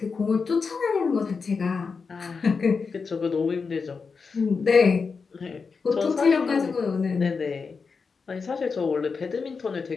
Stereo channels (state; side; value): quieter; right; 5.1 dB